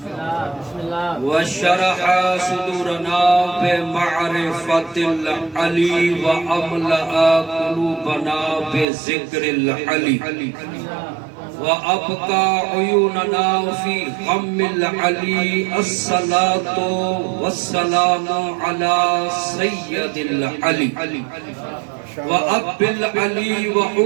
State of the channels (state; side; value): drops out; left; at 8.8 s